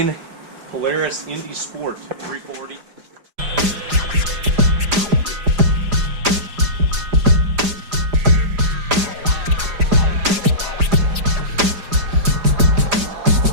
Polaris Indy Sport 340.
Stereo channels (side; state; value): left; late; 5.0 ms